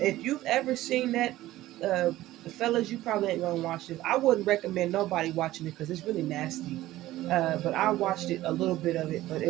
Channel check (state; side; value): quieter; left; 15.8 dB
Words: if you've ever seen that, uh, fellas, you probably ain't gonna watch this. I wouldn't recommend nobody watching it because it's really nasty. But I watched it a little bit of it, but